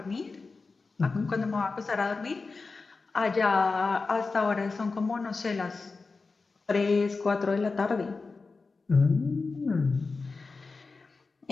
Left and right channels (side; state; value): right; quieter; 4.1 dB